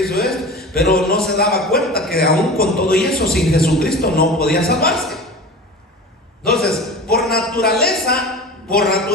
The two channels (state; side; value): normal; both; correlation 0.34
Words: hizo esto, pero no se daba cuenta que aún con todo y eso, sin Jesucristo no podía salvarse. Entonces, por naturaleza,